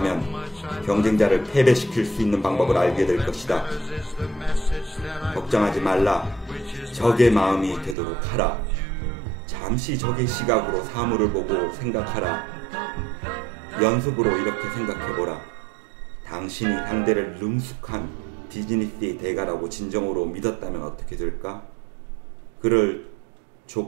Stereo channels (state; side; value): drops out; left; at 8.0 s